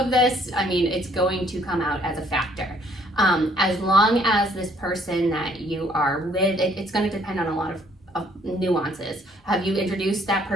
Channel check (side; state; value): both; normal; correlation 0.63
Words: this. I mean, it's going to come out as a factor. As long as this person that you are with, it's going to depend on a lot of nuances. Have you introduced that